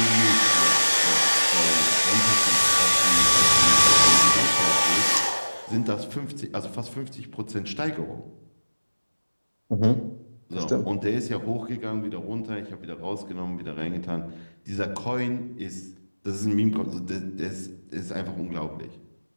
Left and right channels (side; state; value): both; inverted; correlation -1.00